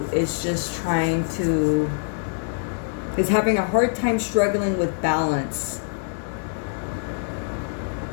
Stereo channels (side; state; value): right; silent; digital silence